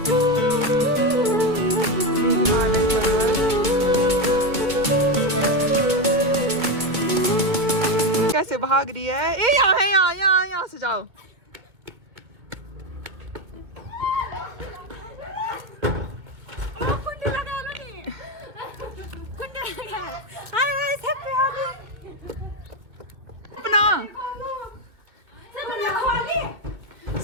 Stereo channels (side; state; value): left; late; 2.2 ms